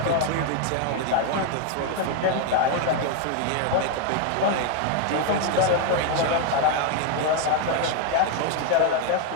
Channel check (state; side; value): different; both; correlation 0.01